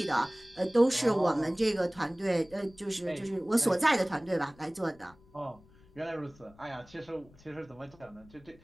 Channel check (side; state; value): left; noise; rumble, 26 dB below the sound